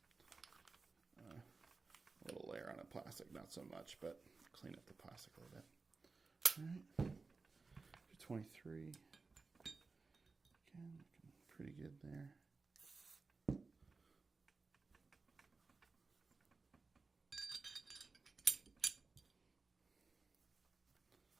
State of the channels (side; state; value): left; quieter; 4.1 dB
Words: a little layer on the plastic. Not so much, but clean up the plastic a little bit. All right. 23. Again, looking pretty good there.